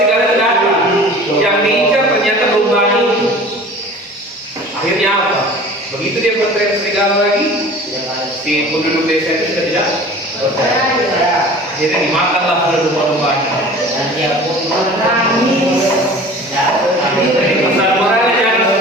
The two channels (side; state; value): both; normal; correlation 0.42